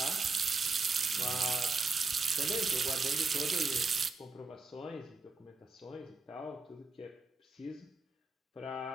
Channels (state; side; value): quieter; left; 3.9 dB